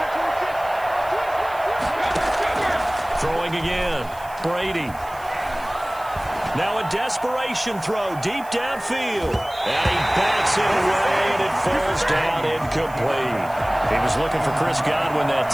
Throwing again. Brady. Now a desperation throw deep downfield. And he bats it away, and it falls down incomplete. He was looking for Chris Godwin that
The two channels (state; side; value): noise; right; hiss, 22 dB below the sound